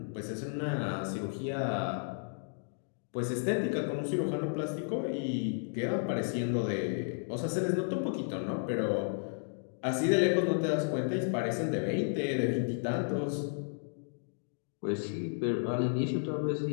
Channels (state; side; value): silent; right; digital silence